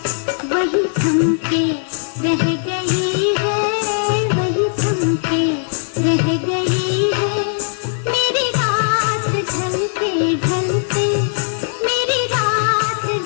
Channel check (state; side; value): silent; right; digital silence